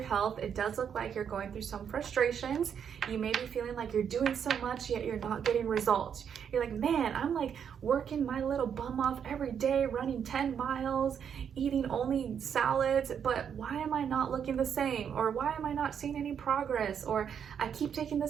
it does look like you're going through some frustrations. You may be feeling like you're doing so much, yet you're not getting results. You're like, man, I'm like working my little bum off every day, running 10 miles, eating only salads, but why am I not looking the same? Or why am I not seeing any progress? Or I keep taking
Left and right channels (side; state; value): left; quieter; 7.9 dB